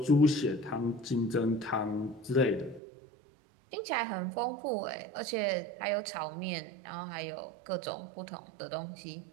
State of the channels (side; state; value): left; drops out; at 2.8 s